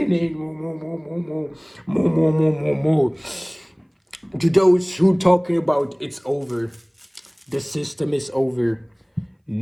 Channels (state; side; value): identical; both; correlation 1.00